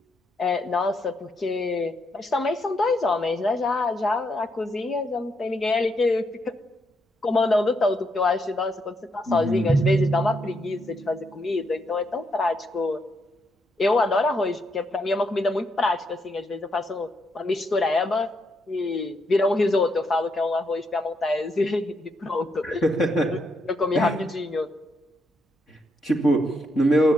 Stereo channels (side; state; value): both; normal; correlation 0.78